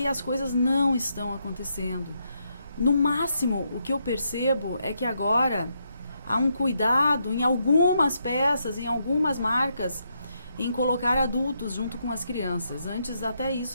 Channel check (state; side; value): inverted; both; correlation -0.79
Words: as coisas não estão acontecendo. No máximo, o que eu percebo é que agora há um cuidado em algumas peças, em algumas marcas, em colocar adultos junto com as crianças. Antes até